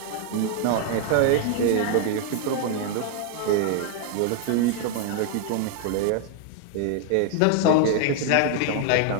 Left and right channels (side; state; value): both; different; correlation 0.00